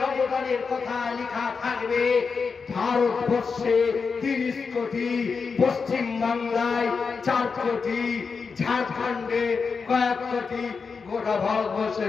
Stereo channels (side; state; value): right; quieter; 5.2 dB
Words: অবদানের কথা লেখা থাকবে। ভারতবর্ষে ৩০ কোটি, পশ্চিম বাংলায় ৪ কোটি, ঝাড়খণ্ডে কয়েক কোটি, গোটা